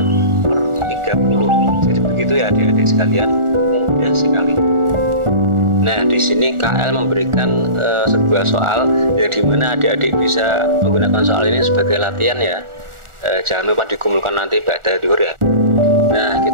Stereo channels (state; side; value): late; left; 1.4 ms